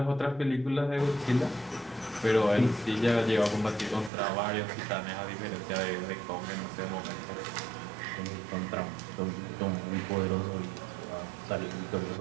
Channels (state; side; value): drops out; left; at 4.1 s